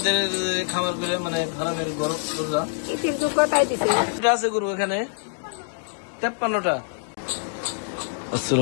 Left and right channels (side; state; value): right; silent; digital silence